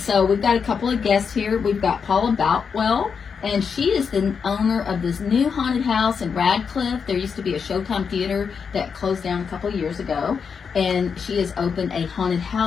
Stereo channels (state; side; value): quieter; right; 6.2 dB